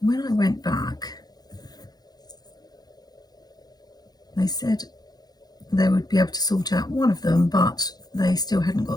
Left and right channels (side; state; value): right; late; 0.19 ms